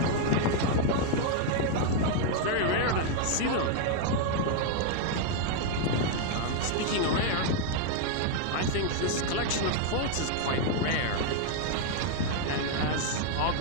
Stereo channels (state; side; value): different; both; correlation 0.00